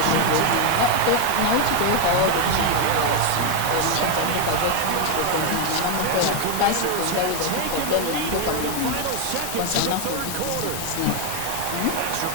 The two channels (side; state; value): both; different; correlation 0.01